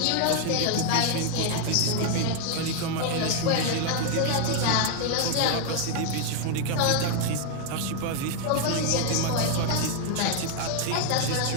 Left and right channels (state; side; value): different; both; correlation 0.00